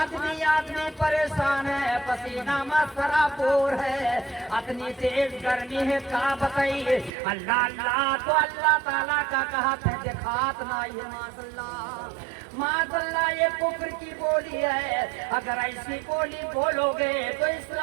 परेशान है, पसीना मसरापुर है, इतनी तेज गर्मी है का बताइए। अल्लाह अल्लाह तो अल्लाह ताला का कहते हैं दिखात नहीं है। माशाअल्लाह माशाअल्लाह ये कुफ्र की बोली है। अगर ऐसी बोली बोलोगे तो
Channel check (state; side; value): drops out; left; at 7.1 s